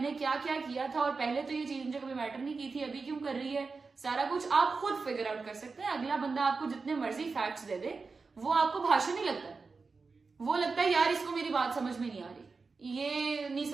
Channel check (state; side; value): quieter; left; 4.4 dB